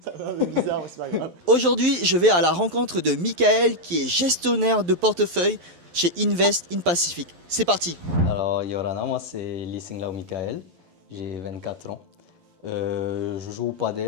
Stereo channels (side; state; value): left; late; 11 ms